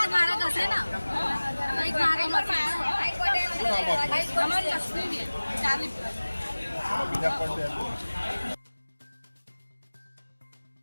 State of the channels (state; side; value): inverted; both; correlation -1.00